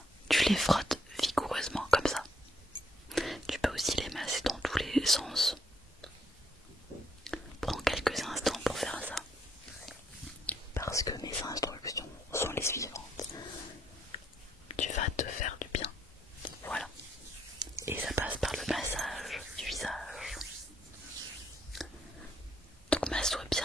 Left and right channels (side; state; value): both; normal; correlation 0.71